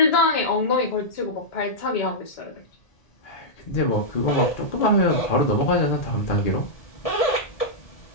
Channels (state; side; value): late; right; 1.8 ms